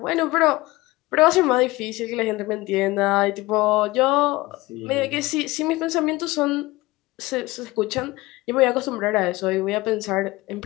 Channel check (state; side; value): quieter; right; 20.0 dB